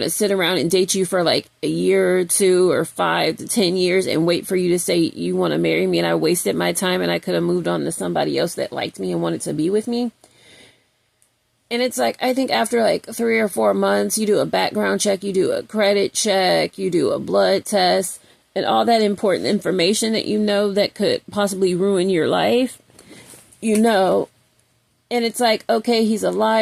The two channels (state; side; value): identical; both; correlation 1.00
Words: to sit around and date you for like a year or 2 or 5 to 10 years and wait for you to say you want to marry me. And I wasted my time and I could have moved on to somebody else that liked me and wanted to be with me. And it's like, I think after like 3 or 4 months, you do a background check, you do a credit check, you do a blood test, and all that important information that you know that could possibly ruin your life, you know. And it's like, okay, he's a